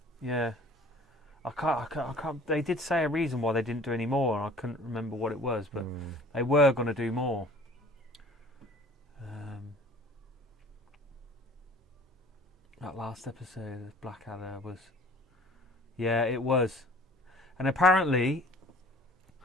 Yeah. I can't. They did say a reason why they didn't do any more, and I couldn't remember what it was, but they were going to do more. That last episode of Blackadder was. Yeah, it was, and apparently.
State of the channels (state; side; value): normal; both; correlation 0.49